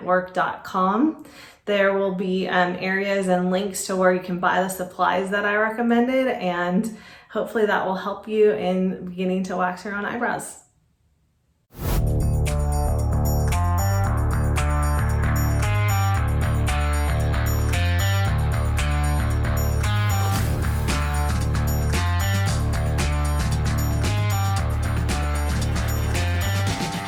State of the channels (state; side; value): identical; both; correlation 1.00